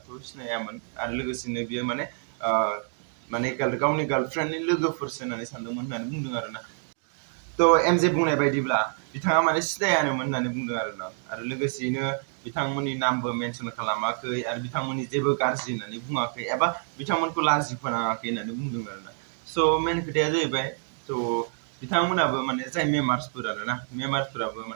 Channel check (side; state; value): left; silent; 55 dB below the other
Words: थ' सिनायामोन आरो लोगोसेनो बियो माने गावनि गार्लफ्रेन्डनि लोगोफोरसो होननानै सानदोंमोन होननानै बुंदों आरोना थ' एमजे बुंनाय बायदिब्ला बिथाङा माने सिनायानोमोन होननानै बुंदों आरोना आरो लोगोसेयैनो बिथांमोननि नामबो मेनसन खालामाखै आरो बिथांमोननि जेबो गाज्रि होननानै बुङाखै एबा बिथांमोनखौ लाजि फोनाङाखै होननानै बुंदों आरोना स' मेन खोथाया जाहैबाय थ' बिथांमोनाबो माने जाय मेम्बार्सफोर आरोना मेम्बार्सफोराबो